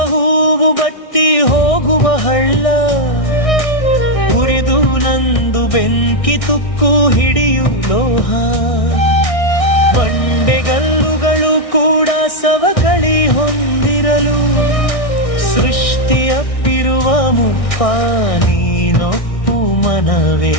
ಹೂವು ಬತ್ತಿ ಹೋಗುವ ಹಳ್ಳ, ಉರಿದು ನಂದು ಬೆಂಕಿ ತುಕ್ಕು ಹಿಡಿಯು ಲೋಹ. ಬಂಡೆಗಲ್ಲುಗಳು ಕೂಡ ಸವಕಳಿ ಹೊಂದಿರಲು, ಸೃಷ್ಟಿಯಪ್ಪಿರುವ ಮುಪ್ಪ ನೀನೊಪ್ಪು ಮನವೇ.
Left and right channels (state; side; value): late; right; 1.6 ms